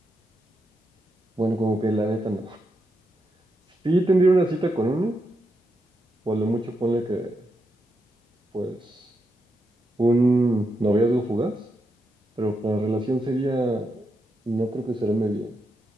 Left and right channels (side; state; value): both; normal; correlation 0.84